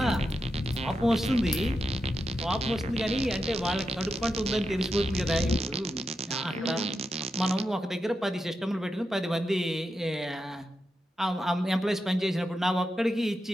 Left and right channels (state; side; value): normal; both; correlation 0.87